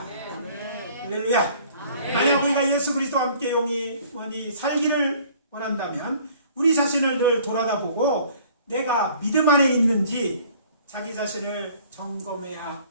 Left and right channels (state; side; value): inverted; both; correlation -0.54